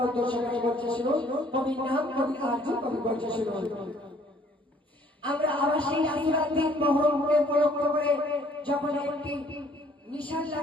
উদ্দেশ্য করে বলছে শুনো কবির নাম কবি আরজু কবি বলছে শুনো আমরা আবার সেই আসরার দিন মহরমকে উপলক্ষ করে যখন একটি নিশান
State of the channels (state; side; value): normal; both; correlation 0.60